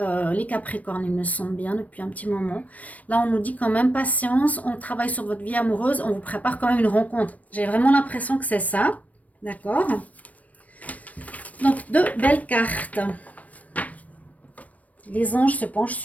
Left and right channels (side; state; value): right; late; 0.070 ms